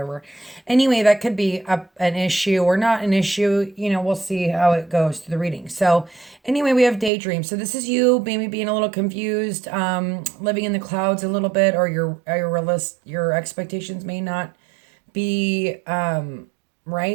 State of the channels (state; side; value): drops out; left; at 7.1 s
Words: Anyway, that could be an issue or not an issue. We'll see how it goes through the reading. So, anyway, we have daydream. So, this is you maybe being a little confused, living in the clouds a little bit, or your expectations may not be